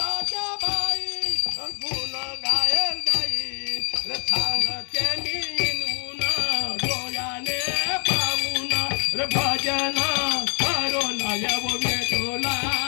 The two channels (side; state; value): right; silent; 58 dB below the other